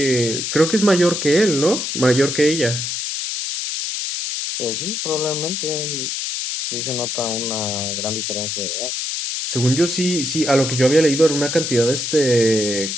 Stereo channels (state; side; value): noise; left; hiss, 3 dB below the sound